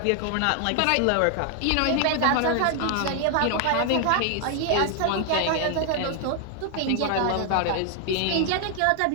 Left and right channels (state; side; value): different; both; correlation 0.00